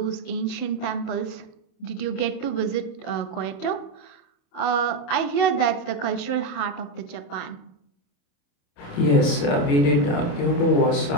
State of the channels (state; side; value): late; right; 28 ms